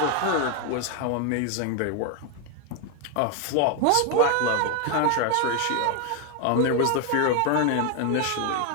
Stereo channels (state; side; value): different; both; correlation 0.01